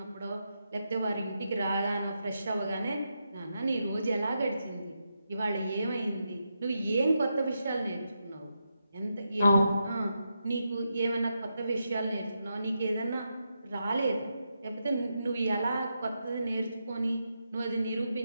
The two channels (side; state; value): both; inverted; correlation -0.85